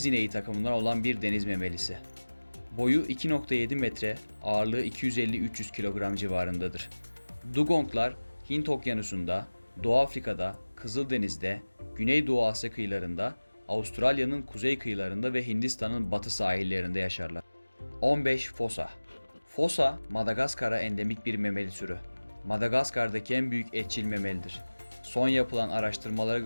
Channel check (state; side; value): inverted; both; correlation -1.00